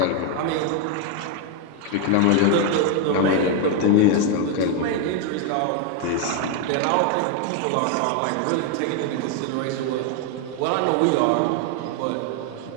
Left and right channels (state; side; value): different; both; correlation 0.01